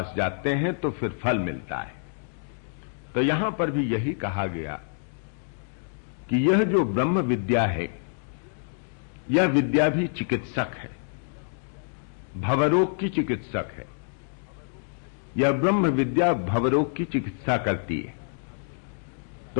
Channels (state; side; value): silent; right; digital silence